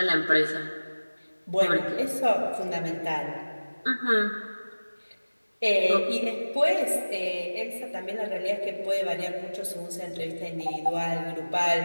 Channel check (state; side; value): inverted; both; correlation -1.00